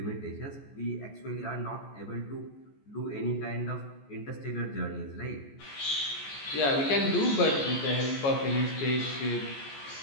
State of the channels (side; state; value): right; late; 14 ms